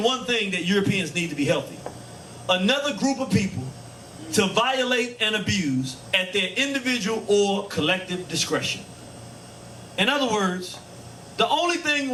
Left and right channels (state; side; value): identical; both; correlation 1.00